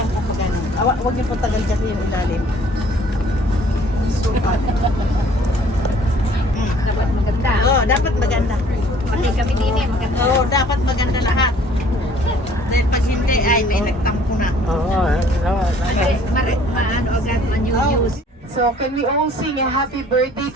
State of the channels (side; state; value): both; normal; correlation 0.56